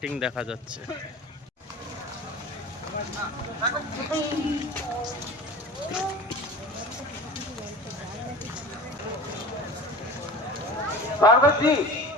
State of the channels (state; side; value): normal; both; correlation 0.36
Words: দেখা যাচ্ছে। स्वागत जी,